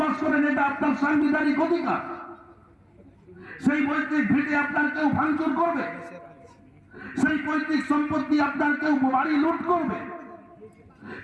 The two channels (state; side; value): identical; both; correlation 1.00